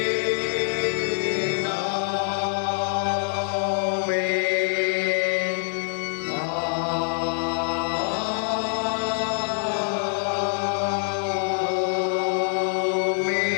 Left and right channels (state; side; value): silent; right; digital silence